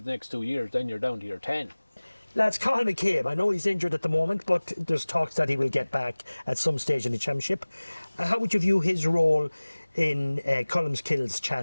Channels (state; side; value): inverted; both; correlation -1.00